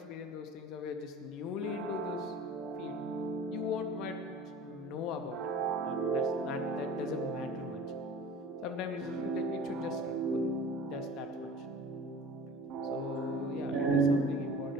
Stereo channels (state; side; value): normal; both; correlation 0.41